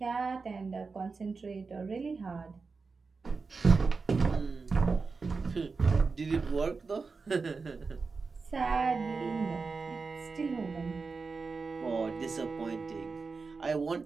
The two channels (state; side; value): quieter; left; 4.5 dB